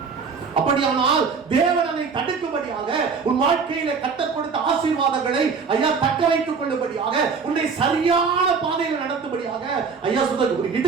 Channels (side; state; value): left; quieter; 5.4 dB